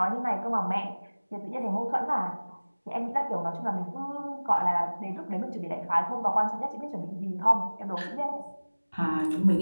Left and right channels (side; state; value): both; inverted; correlation -1.00